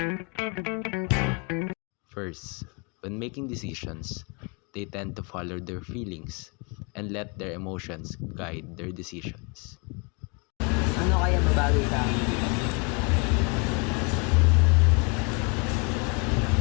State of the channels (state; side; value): quieter; right; 32.3 dB